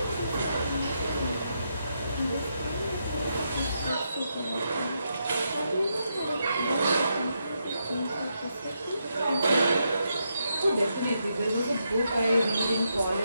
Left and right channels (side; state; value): both; inverted; correlation -0.81